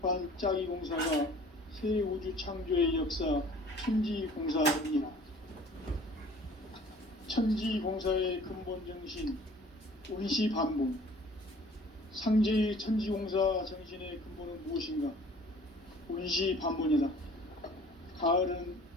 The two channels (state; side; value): normal; both; correlation 0.51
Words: 짜기 공사가 새 우주 창조의 역사 천지공사이니라. 천지공사의 근본 정신 원시반복. 상제의 천지공사 정신의 근본은 무엇인가? 원시반복이다. 가을은